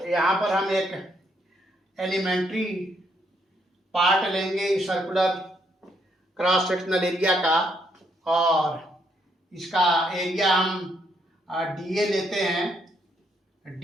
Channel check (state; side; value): normal; both; correlation 0.74